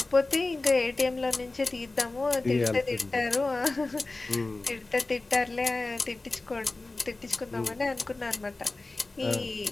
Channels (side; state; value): right; quieter; 3.2 dB